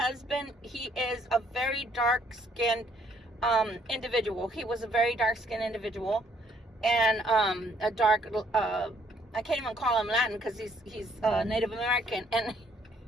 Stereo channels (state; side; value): normal; both; correlation 0.66